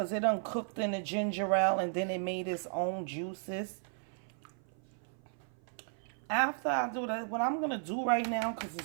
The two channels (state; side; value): silent; left; 54 dB below the other